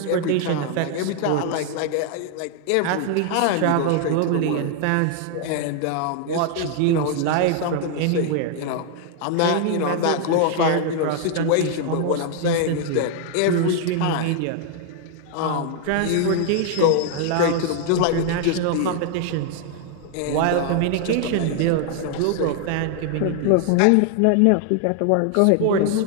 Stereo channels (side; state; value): both; different; correlation 0.00